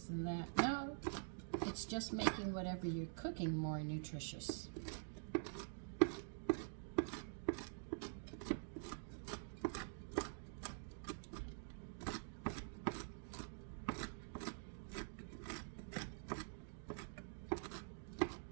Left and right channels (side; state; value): left; silent; digital silence